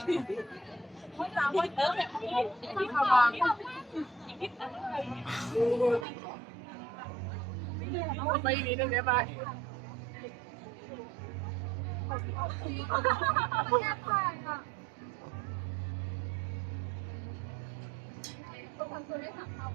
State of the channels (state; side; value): drops out; left; at 6.1 s